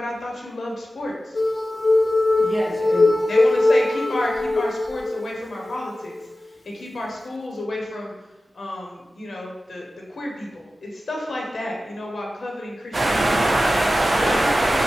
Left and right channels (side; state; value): both; normal; correlation 0.95